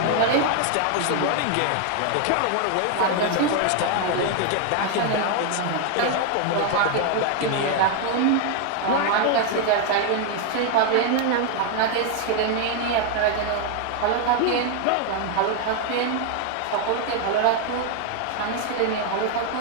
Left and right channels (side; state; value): both; different; correlation 0.00